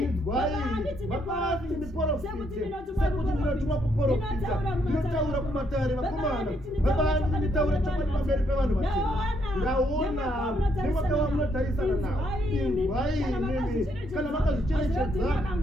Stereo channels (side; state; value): both; normal; correlation 0.73